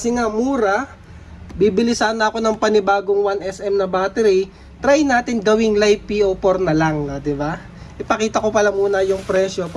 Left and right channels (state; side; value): identical; both; correlation 1.00